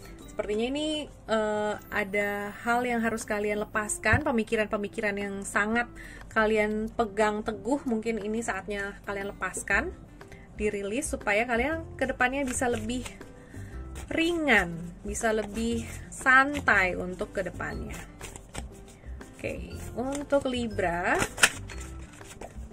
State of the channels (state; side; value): identical; both; correlation 1.00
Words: Sepertinya ini ada hal yang harus kalian lepaskan, pemikiran-pemikiran yang sangat kalian pegang teguh, mungkin ini saatnya kalian lepaskan, dirilis supaya kalian kedepannya bisa lebih ringan, bisa lebih santai untuk kedepannya. Oke, untuk Libra,